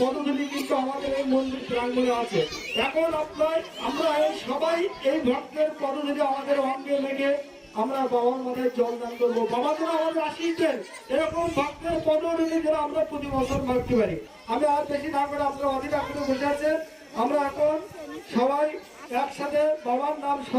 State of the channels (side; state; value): both; identical; correlation 1.00